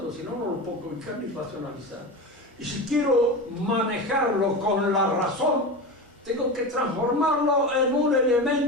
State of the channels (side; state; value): both; normal; correlation 0.25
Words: si no, no lo puedo ubicar ni racionalizar. Y si quiero manejarlo con la razón, tengo que transformarlo en un